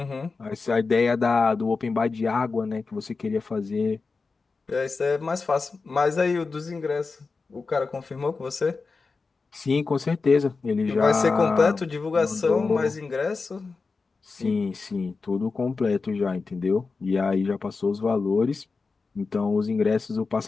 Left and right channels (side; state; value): right; quieter; 4.3 dB